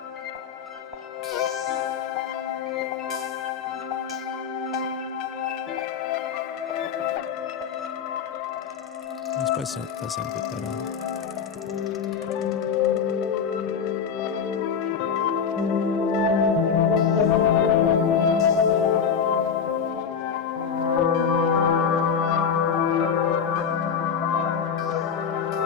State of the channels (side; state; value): right; quieter; 6.9 dB